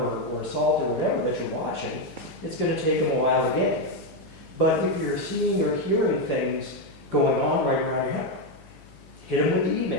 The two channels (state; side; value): noise; left; hum, 24 dB below the sound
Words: or assault or whatever that you're watching. It's going to take them a while to get. But if you're seeing or hearing things going on right around your house, hit them with the